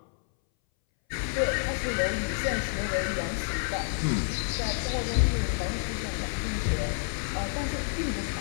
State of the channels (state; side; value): silent; right; 59 dB below the other